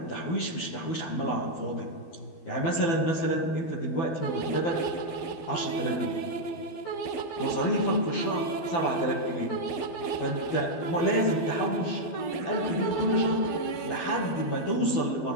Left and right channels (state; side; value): late; right; 12 ms